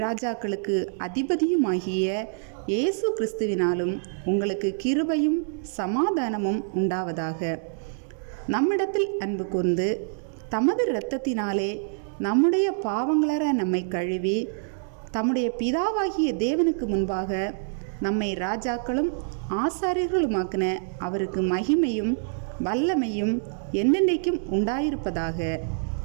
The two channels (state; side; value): silent; left; digital silence